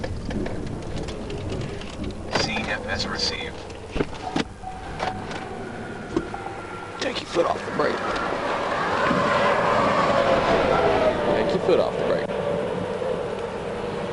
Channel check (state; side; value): identical; both; correlation 1.00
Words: CFS received. Take your foot off the brake. Take your foot off the brake.